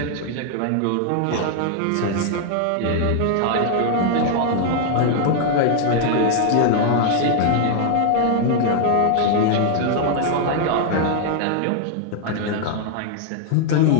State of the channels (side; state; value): both; different; correlation 0.00